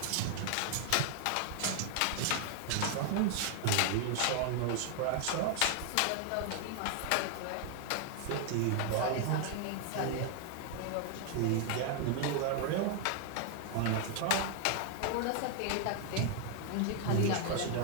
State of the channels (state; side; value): different; both; correlation 0.00